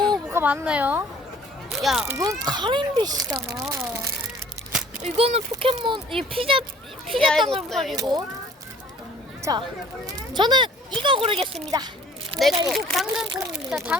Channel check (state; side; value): normal; both; correlation 0.54